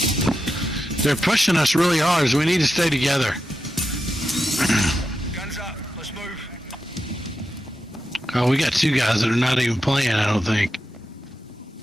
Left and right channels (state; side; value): normal; both; correlation 0.88